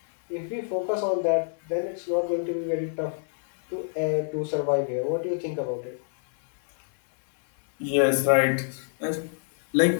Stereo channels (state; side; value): silent; right; 61 dB below the other